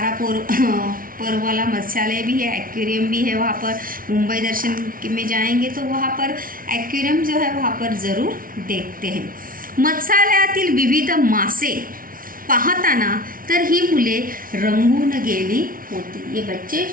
वाला मत्स्यालय भी है, एक्वेरियम भी है वहाँ पर। मुंबई दर्शन में जाएंगे तो वहाँ पर एक्वेरियम जो है वहाँ पर ज़रूर देखते हैं। मत्स्यालयातील विविध मासे पाहताना तर ही मुले रंगून गेली होती। ये बच्चे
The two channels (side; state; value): left; late; 0.41 ms